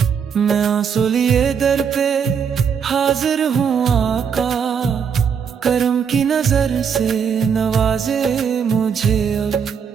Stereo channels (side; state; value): left; quieter; 6.9 dB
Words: मैं आंसू लिए दर पे हाजिर हूँ आका, करम की नजर से नवाजे मुझे अब।